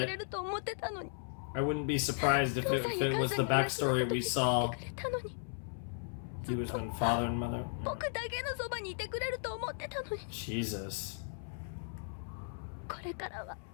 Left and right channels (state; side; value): silent; right; 54 dB below the other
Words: れると思ってたのに。 I wouldn't be surprised if 父 it, さん if や it 母 was さ the んに話す backstory こと we 言 saw. ってくれたのに。 He was with father and mother. 僕だけのそばにいてくれると思ってたのに。 Jesus. これからは